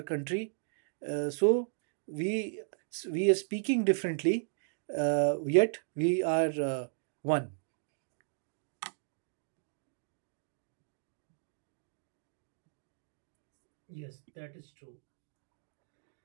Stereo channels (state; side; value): silent; left; digital silence